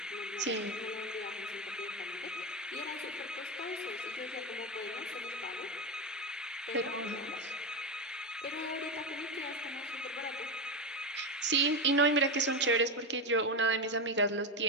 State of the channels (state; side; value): normal; both; correlation 0.13